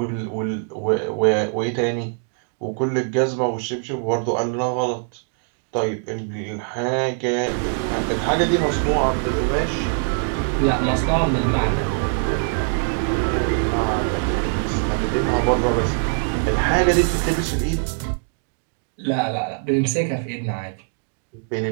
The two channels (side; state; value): left; silent; 62 dB below the other